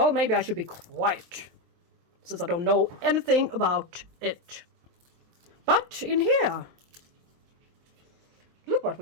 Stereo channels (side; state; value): left; late; 23 ms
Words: maybe I should be quiet, since I don't know anything about it. But in here, look what